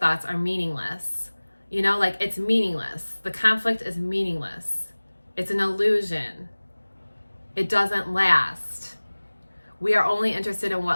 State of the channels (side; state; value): both; inverted; correlation -1.00